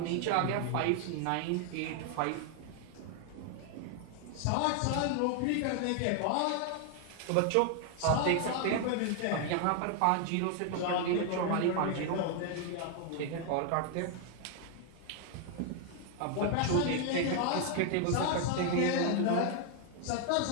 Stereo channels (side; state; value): both; different; correlation 0.00